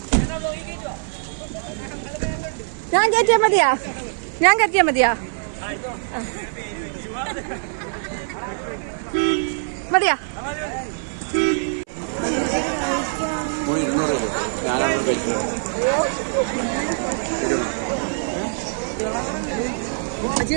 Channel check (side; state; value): left; silent; 62 dB below the other